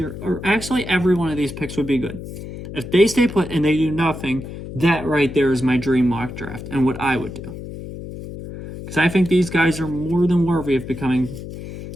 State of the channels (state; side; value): noise; left; hum, 11 dB below the sound